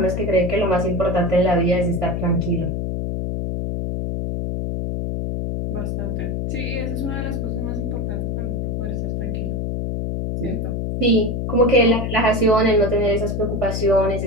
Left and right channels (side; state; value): left; noise; hum, 2 dB below the sound